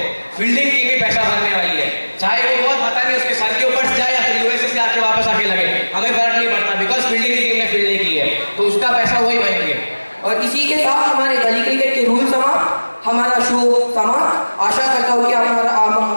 फील्डिंग टीम ही पैसा भरने वाली है, चाहे वो बॉल पता नहीं उसके सर के ऊपर से जाए या फिर यूएसए से आके वापस आके लगे, हमें फर्क नहीं पड़ता, बिकॉज फील्डिंग की टीम ने फील्डिंग की है, तो उसका पैसा वही भरेंगे। और इसी के साथ हमारे गली क्रिकेट के रूल समाप्त, हमारा शो समाप्त। आशा करता हूँ कि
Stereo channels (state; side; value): inverted; both; correlation -1.00